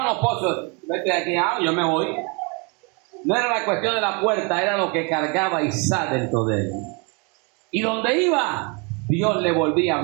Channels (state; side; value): quieter; left; 32.3 dB